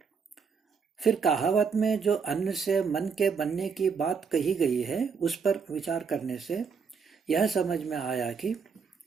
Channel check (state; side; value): quieter; left; 5.8 dB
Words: फिर कहावत में जो अन्न से मन के बनने की बात कही गई है उस पर विचार करने से यह समझ में आया कि